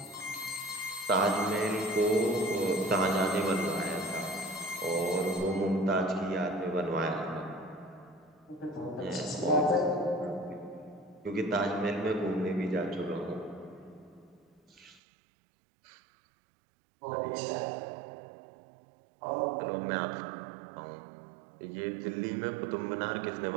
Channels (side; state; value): left; drops out; at 15.0 s